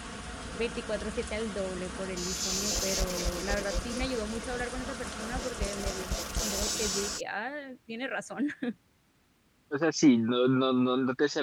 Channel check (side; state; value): both; identical; correlation 1.00